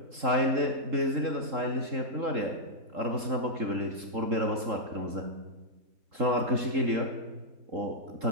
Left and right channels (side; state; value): left; late; 3.7 ms